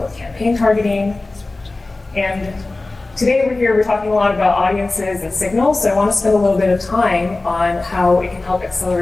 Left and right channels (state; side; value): quieter; right; 3.1 dB